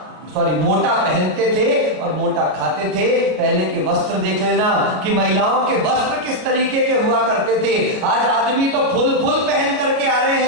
मोटा पहनते थे और मोटा खाते थे। पहले के वस्त्र देख लेना कि महिलाओं के वस्त्र किस तरीके के हुआ करते थे। आज आदमी तो फुल पहन करके आ रहे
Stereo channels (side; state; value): left; late; 33 ms